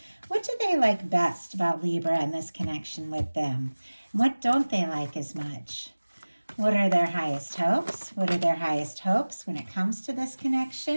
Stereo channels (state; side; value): inverted; both; correlation -1.00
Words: What do they like best about Libra and this connection with them? What don't they like as much? What are their highest hopes? What are their highest hopes when it comes to this